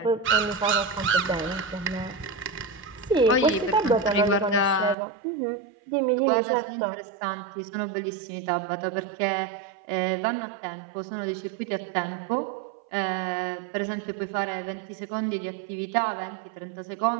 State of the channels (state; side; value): drops out; left; at 5.0 s